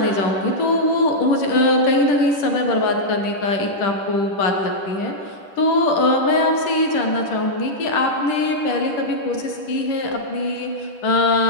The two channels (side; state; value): right; late; 10 ms